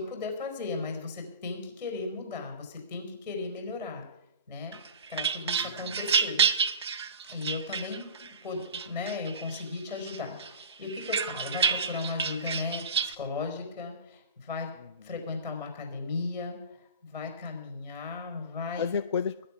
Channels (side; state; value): both; inverted; correlation -0.34